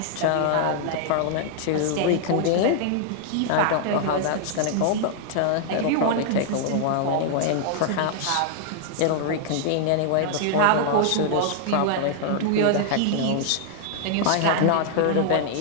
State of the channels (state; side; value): different; both; correlation -0.01